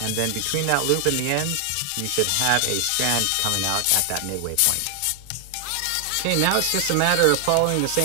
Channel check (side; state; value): both; different; correlation 0.00